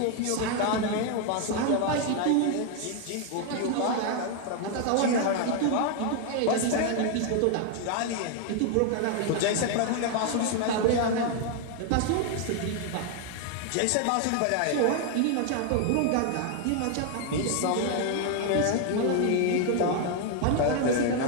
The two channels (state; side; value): different; both; correlation 0.00